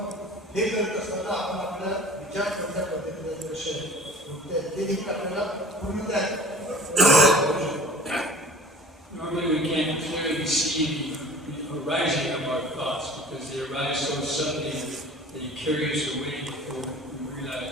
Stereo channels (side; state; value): both; normal; correlation 0.43